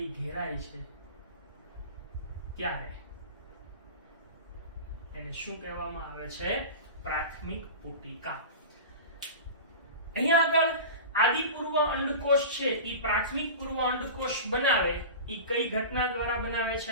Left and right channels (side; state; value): both; inverted; correlation -0.31